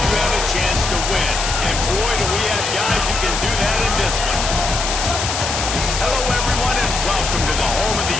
have a chance to win. And boy, do we have guys who can do that in this one. Hello, everyone, and welcome to the home of the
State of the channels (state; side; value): noise; left; hiss, 3 dB below the sound